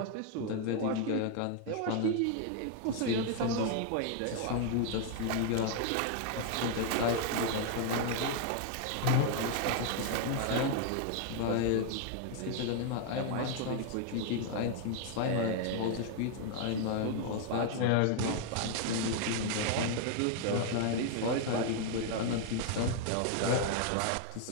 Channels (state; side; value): different; both; correlation 0.00